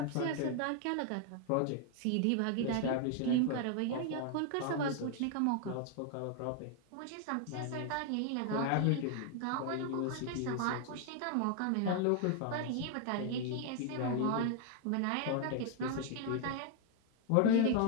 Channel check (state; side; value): different; both; correlation 0.00